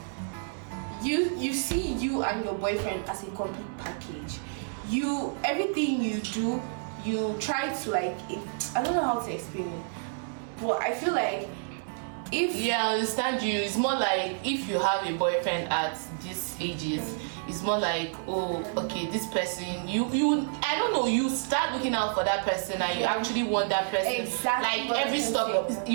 you see you and your boyfriend as a complete package. Everything you do, you try to like, I don't know how to explain it, but I feel like I understand you. It's more like if you have a boyfriend at these ages, it's more like, oh, okay, this person, I don't know, you start looking out for that person and you actually want that person. Exactly. Like every step,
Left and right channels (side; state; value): left; silent; 58 dB below the other